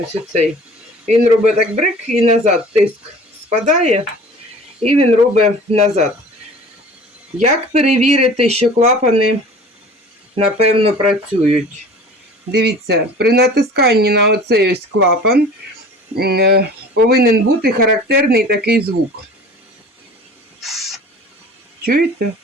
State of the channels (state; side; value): normal; both; correlation 0.43